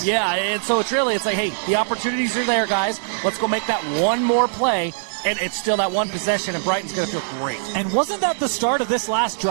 Yeah, and so it's like, hey, the opportunities are there, guys. Let's go make that one more play. And it's still that one possession, and Brighton's going to feel great. And wasn't that the start of this last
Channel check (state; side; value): silent; left; 65 dB below the other